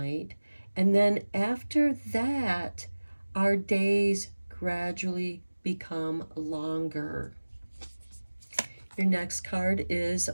And then after that, our days gradually become longer. Your next card is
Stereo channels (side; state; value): both; inverted; correlation -1.00